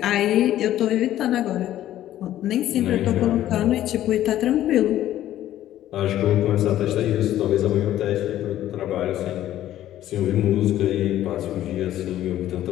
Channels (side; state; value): right; quieter; 12.9 dB